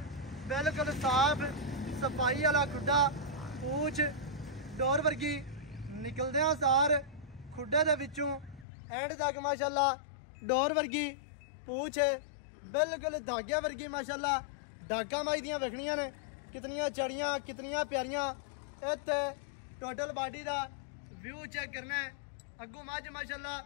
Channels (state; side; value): drops out; right; at 8.7 s